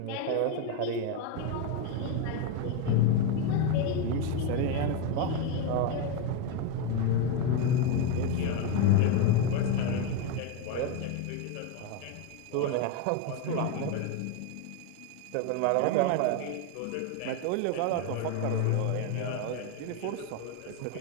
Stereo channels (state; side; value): different; both; correlation 0.03